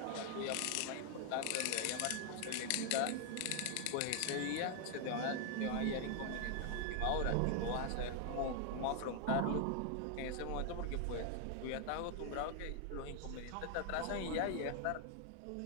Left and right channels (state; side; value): different; both; correlation 0.00